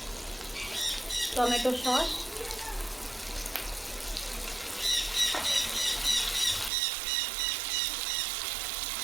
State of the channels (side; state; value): left; drops out; at 6.7 s